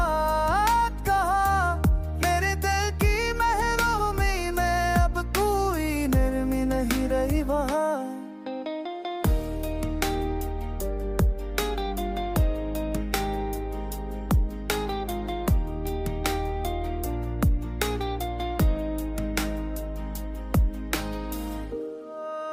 कहा। मेरे दिल की महरूमी में अब कोई नरमी नहीं रही वहाँ।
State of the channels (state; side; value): identical; both; correlation 1.00